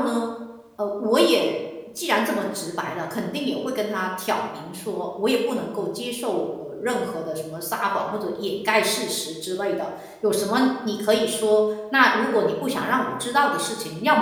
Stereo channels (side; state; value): both; identical; correlation 1.00